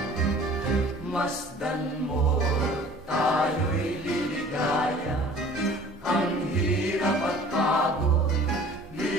Masdan mo, tayo'y liligaya. Ang hirap at pagod,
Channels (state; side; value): normal; both; correlation 0.48